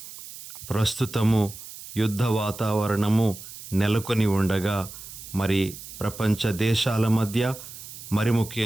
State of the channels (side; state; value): right; noise; hiss, 14 dB below the sound